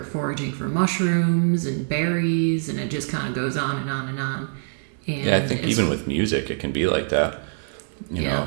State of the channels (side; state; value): left; silent; 56 dB below the other